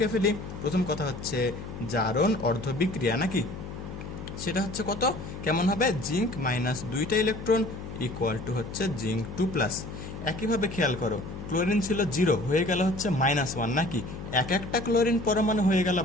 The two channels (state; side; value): noise; left; hum, 10 dB below the sound